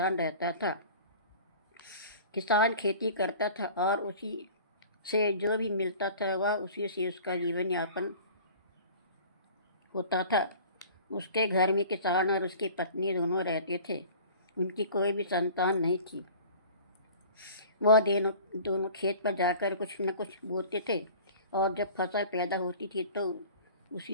रहता था। किसान खेती करता था और उसी से जो भी मिलता था वह उसी से उसका जीवन यापन होता था। उसके घर में किसान और उसकी पत्नी दोनों रहते थे। उनकी कोई भी संतान नहीं थी। वह दोनों खेत पर जाकर कुछ न कुछ बोते थे और जब फसल पैदा होती थी तो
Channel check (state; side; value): inverted; both; correlation -0.44